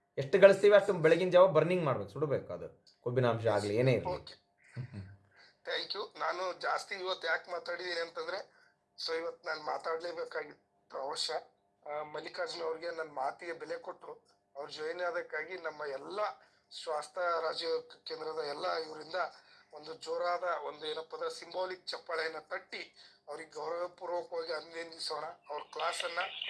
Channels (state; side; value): identical; both; correlation 1.00